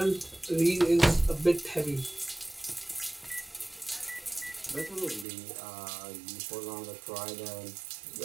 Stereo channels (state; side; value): drops out; left; at 5.2 s